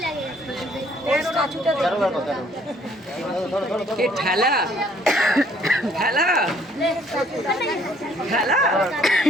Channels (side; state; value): both; normal; correlation 0.62